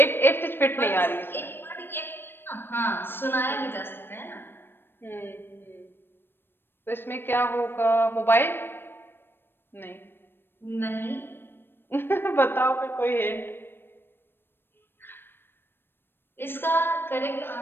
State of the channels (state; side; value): late; right; 0.10 ms